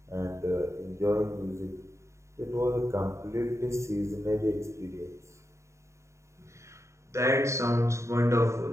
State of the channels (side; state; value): left; late; 0.14 ms